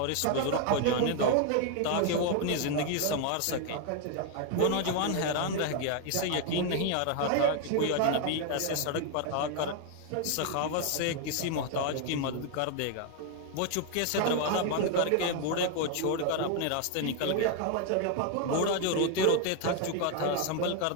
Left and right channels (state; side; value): different; both; correlation 0.00